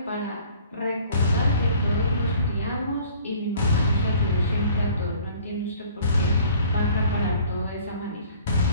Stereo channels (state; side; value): inverted; both; correlation -0.53